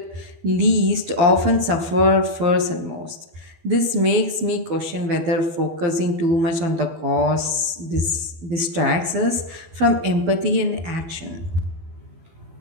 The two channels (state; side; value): late; left; 12 ms